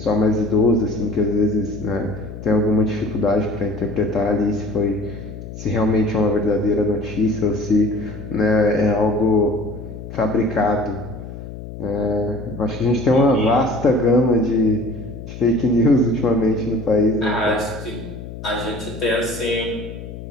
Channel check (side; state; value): left; noise; hum, 11 dB below the sound